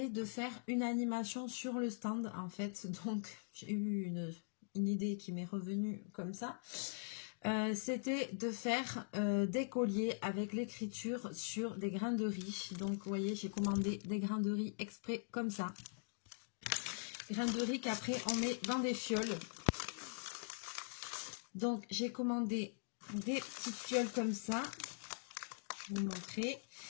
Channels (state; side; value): silent; right; digital silence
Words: de faire une animation sur le stand, en fait. Donc, j'ai eu une idée qui m'est revenue comme ça. C'était de faire des colliers avec l'écriture sur des grains de riz. Donc, vous voyez, j'ai commandé des grains de riz exprès comme ça. Des grains de riz qu'après, on met dans des fioles. Donc, j'ai commandé des petites fioles comme ça. Je vais vous montrer.